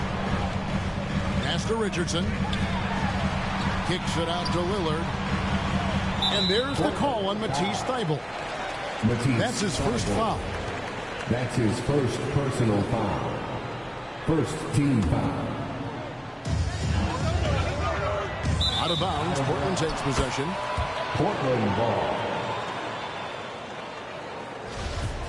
Pass to Richardson. Kicks it out to Lillard. And there's the call on Matisse Thibault. That's his first foul. That's his first personal foul. First team foul. Out of bounds, Portland takes possession. Portland ball.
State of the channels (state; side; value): identical; both; correlation 1.00